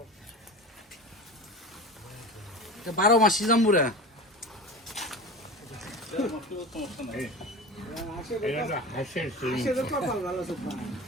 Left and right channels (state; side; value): normal; both; correlation 0.31